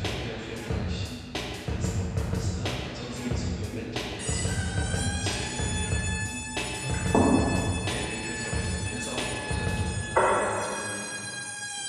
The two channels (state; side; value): identical; both; correlation 1.00